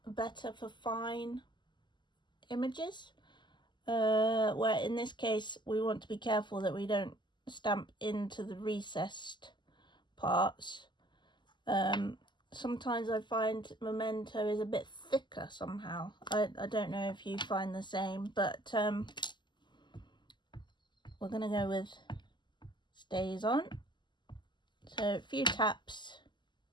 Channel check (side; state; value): right; late; 0.22 ms